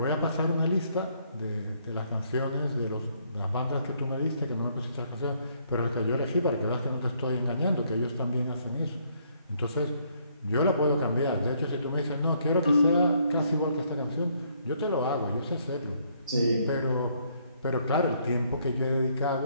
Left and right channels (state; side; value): inverted; both; correlation -0.68